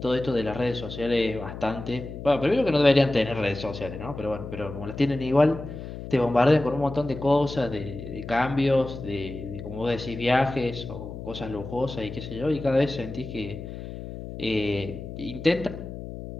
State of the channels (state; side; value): noise; left; hum, 10 dB below the sound